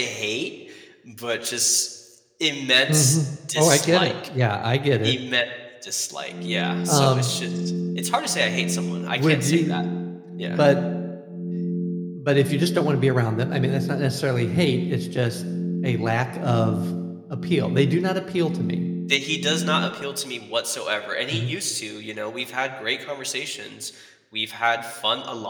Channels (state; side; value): identical; both; correlation 1.00